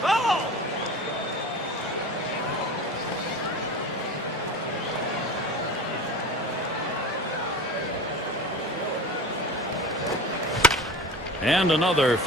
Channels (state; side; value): normal; both; correlation 0.34